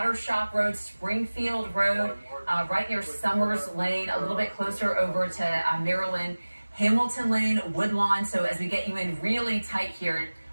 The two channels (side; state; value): both; inverted; correlation -1.00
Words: Shop Road, Springfield Road, right near Summers Lane, a little bit closer over to Maryland, Hamilton Lane, Woodlawn. So as we get you in really tight here,